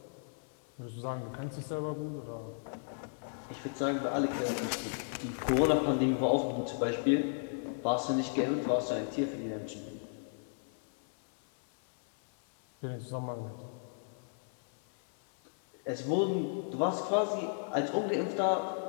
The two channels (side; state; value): right; silent; 55 dB below the other